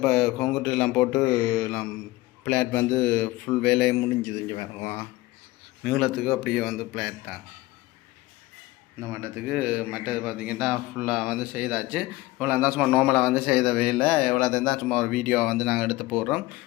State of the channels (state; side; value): quieter; right; 19.1 dB